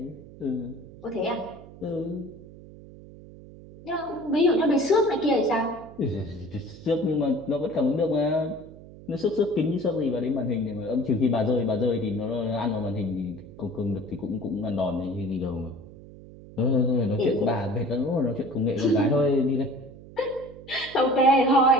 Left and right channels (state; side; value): noise; right; hum, 18 dB below the sound